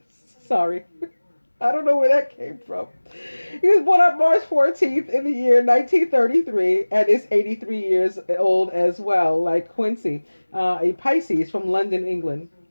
sorry. I don't know where that came from. He was born on March 14th in the year 1933 and is 83 years old as well, like Quincy, a Pisces from London, England.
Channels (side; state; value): both; inverted; correlation -1.00